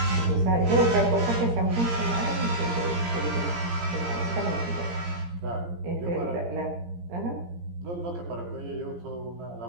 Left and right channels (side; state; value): left; late; 17 ms